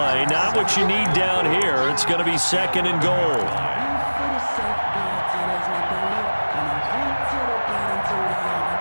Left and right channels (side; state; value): both; inverted; correlation -1.00